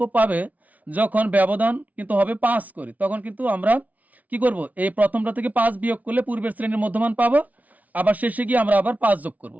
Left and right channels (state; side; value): late; left; 0.072 ms